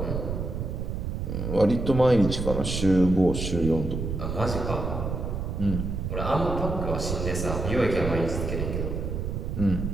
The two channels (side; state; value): right; noise; rumble, 3 dB below the sound